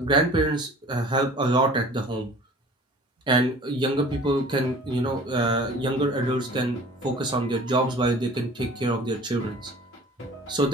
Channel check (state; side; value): normal; both; correlation 0.45